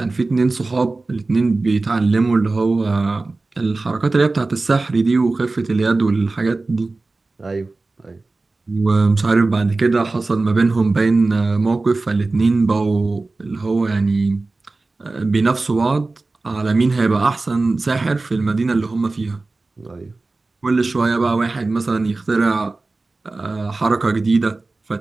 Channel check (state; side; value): quieter; left; 3.4 dB